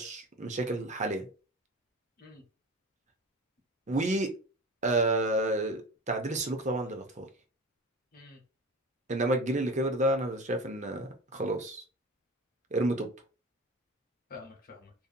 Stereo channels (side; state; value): both; normal; correlation 0.33